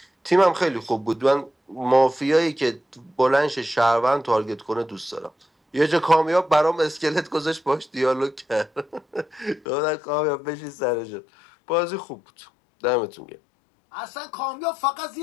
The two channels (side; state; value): right; drops out; at 9.6 s